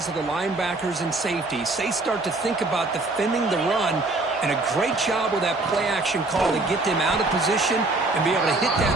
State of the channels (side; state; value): left; quieter; 3.1 dB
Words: of the linebackers and safeties. They start to think about defending the run, and a great job with that play-action call to get them out of position and be able to hit that